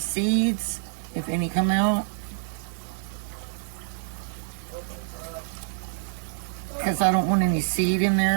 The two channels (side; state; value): left; silent; digital silence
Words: if any come out. Because I don't want any seed in